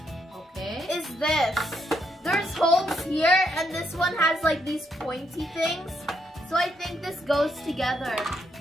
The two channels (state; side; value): normal; both; correlation 0.76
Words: Okay. is this. There's holes here, and this one has like these pointy things. So I think this goes together.